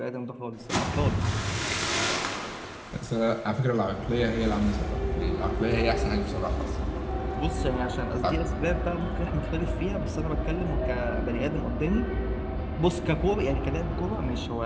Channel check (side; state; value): both; identical; correlation 1.00